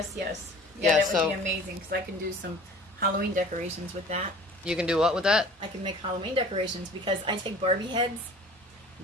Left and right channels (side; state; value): both; normal; correlation 0.45